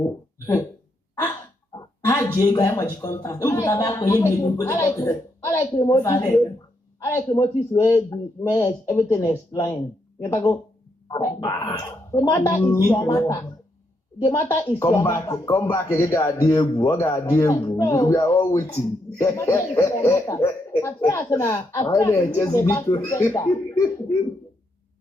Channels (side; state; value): both; normal; correlation 0.78